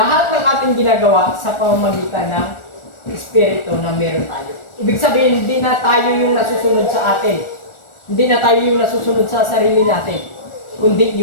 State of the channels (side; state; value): right; late; 1.4 ms